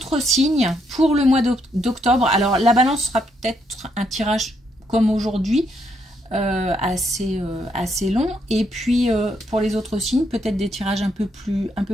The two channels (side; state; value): both; normal; correlation 0.75